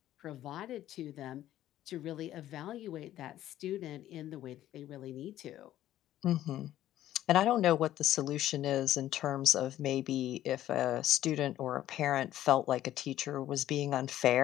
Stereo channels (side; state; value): right; quieter; 13.1 dB